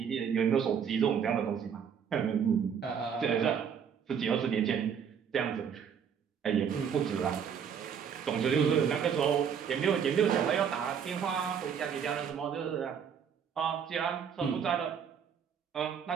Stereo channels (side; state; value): left; quieter; 7.5 dB